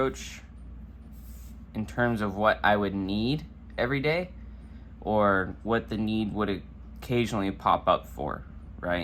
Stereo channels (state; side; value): identical; both; correlation 1.00